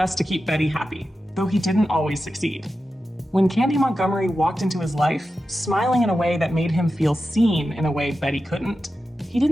to keep Betty happy, though he didn't always succeed. When Candy Montgomery walked into his life, smiling in a way that made him feel seen in a way Betty couldn't, he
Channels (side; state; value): both; normal; correlation 0.91